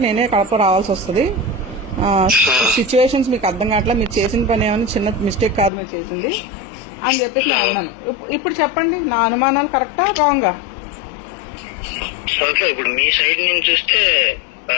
నేనే కడప రావాల్సి వస్తుంది. సిచ్యువేషన్స్ మీకు అర్థం కావట్లా, మీరు చేసిన పని ఏమైనా చిన్న మిస్టేక్ కాదు మీరు చేసింది అని చెప్పేసి నేను అన్నాను. ఇప్పుడు చెప్పండి, నా అనుమానాలు కరెక్టా రాంగా? ఓకే, ఇప్పుడు మీ సైడ్ నుంచి చూస్తే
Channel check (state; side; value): drops out; right; at 5.7 s